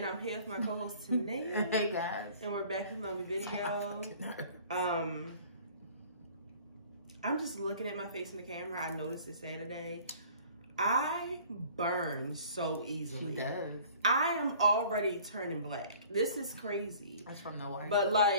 I'm here with my co-host, Tanea. Hey, guys. And we're back with another video. I'm just looking at my face in the camera. I noticed it Saturday. I burn so easily. She does. I am already turning black. This is crazy. That's from the white. But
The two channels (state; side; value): inverted; both; correlation -0.51